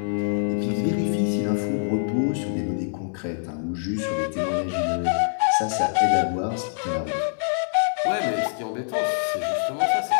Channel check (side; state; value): right; silent; 62 dB below the other